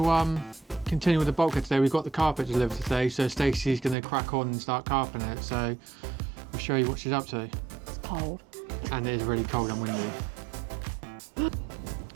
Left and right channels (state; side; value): drops out; left; at 4.0 s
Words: continue with the bulkhead today. We've got the carpet delivered today, so Stacey's going to crack on and start carpeting it. So I'll show you what she's up to. It's cold. And it is really cold and windy.